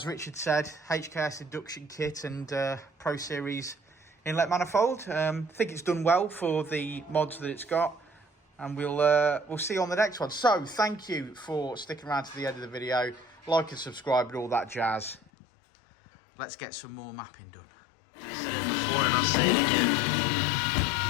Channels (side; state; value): right; drops out; at 15.2 s